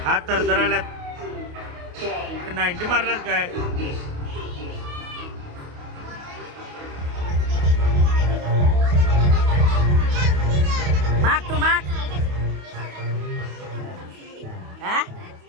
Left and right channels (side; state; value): left; late; 28 ms